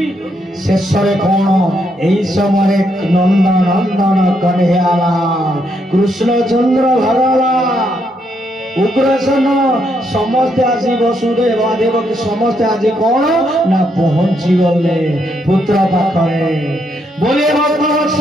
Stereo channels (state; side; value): normal; both; correlation 0.76